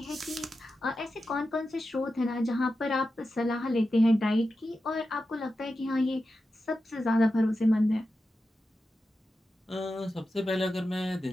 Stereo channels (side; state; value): both; normal; correlation 0.91